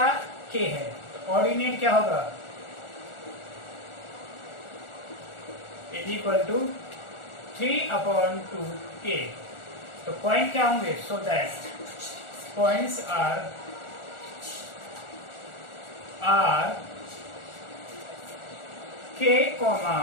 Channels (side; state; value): right; late; 1.4 ms